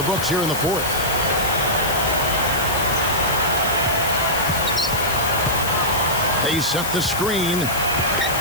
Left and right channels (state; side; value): noise; left; hiss, 6 dB below the sound